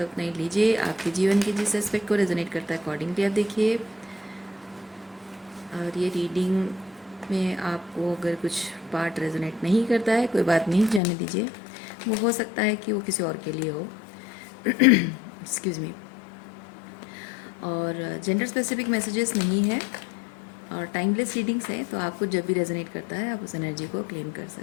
है उतना ही लीजिए। आपके जीवन के जिस एस्पेक्ट को रेजोनेट करता है अकॉर्डिंगली आप देखिए। और ये रीडिंग में आपको अगर कुछ पार्ट रेजोनेट नहीं करता है, कोई बात नहीं, जाने दीजिए। वो हो सकता है कि वो किसी और के लिए हो। Excuse me. और जेंडर स्पेसिफिक मैसेजेस नहीं है और टाइमलेस रीडिंग्स हैं, तो आपको जब भी रेजोनेट करता है आप उस एनर्जी को क्लेम कर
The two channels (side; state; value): right; drops out; at 11.0 s